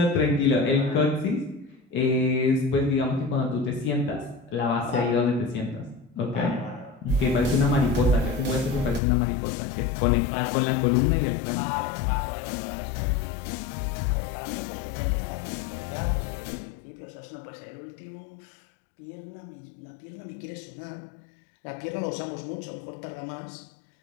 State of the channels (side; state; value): right; drops out; at 9.0 s